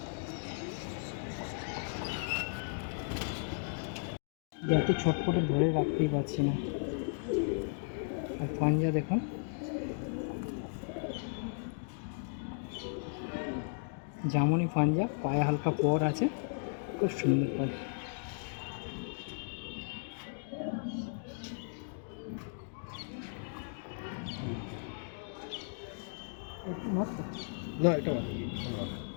এত ছটপটে ধরে রাখতেই পারছি না। আর পাঞ্জা দেখুন, জামনি পাঞ্জা, পায়ে হালকা পর আছে, খুব সুন্দর পাখি। না এটা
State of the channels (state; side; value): silent; right; digital silence